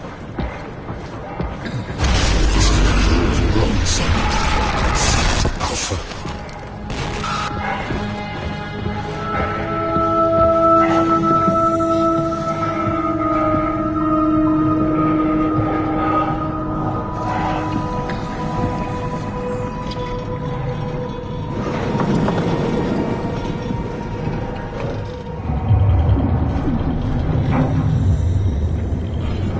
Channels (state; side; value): identical; both; correlation 1.00